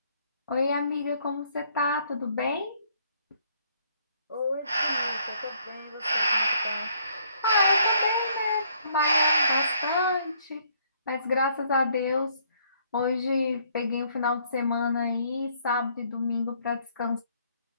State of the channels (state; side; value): inverted; both; correlation -0.66